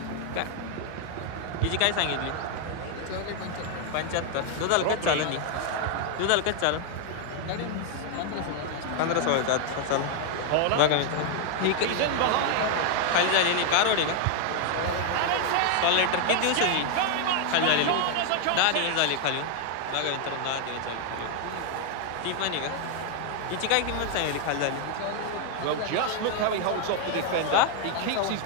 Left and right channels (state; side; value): different; both; correlation 0.00